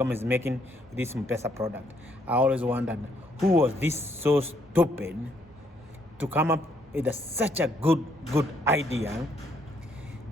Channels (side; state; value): both; normal; correlation 0.70